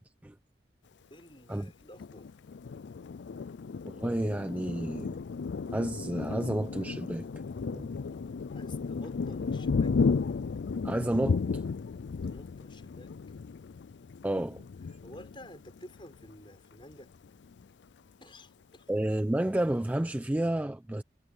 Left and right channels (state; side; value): normal; both; correlation 0.76